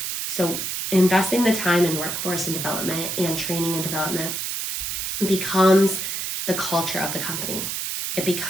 So investing the time in workforce and development and training and development becomes the culture of the company. It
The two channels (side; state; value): right; noise; hiss, 3 dB below the sound